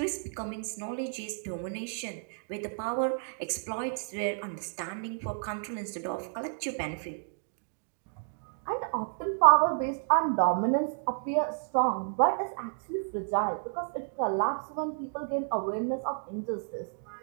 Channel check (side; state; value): left; silent; digital silence